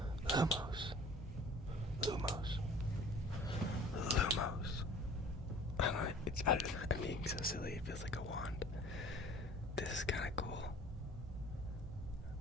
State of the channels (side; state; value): both; normal; correlation 0.48